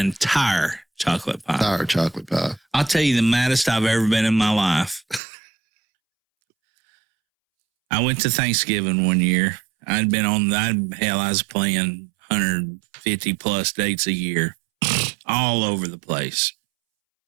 chocolate pie. Entire chocolate pie. I'll tell you the maddest I've ever been in my life. I went to Thanksgiving one year. I was playing 150 plus dates a year, all over the place.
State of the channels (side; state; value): left; drops out; at 5.2 s